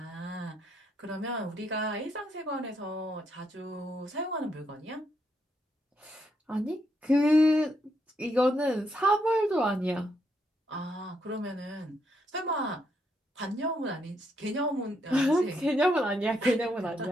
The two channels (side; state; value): both; normal; correlation 0.77